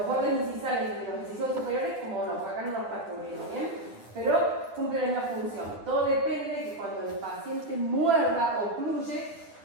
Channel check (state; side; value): late; left; 9.6 ms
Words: bordes incisales de los incisivos superiores, como no, acá no nos está cubriendo, bien, pero cumple la misma función. Todo depende de que cuando el paciente muerda o ocluye,